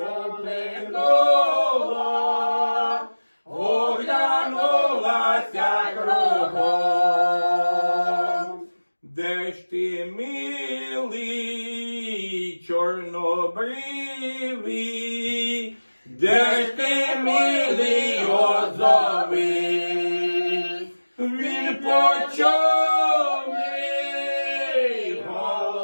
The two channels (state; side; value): inverted; both; correlation -1.00